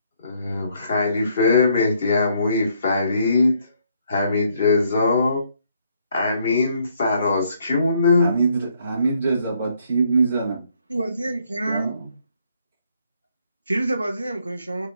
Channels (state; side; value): inverted; both; correlation -0.70